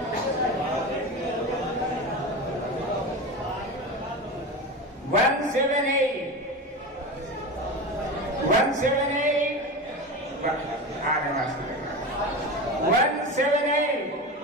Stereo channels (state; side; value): normal; both; correlation 0.25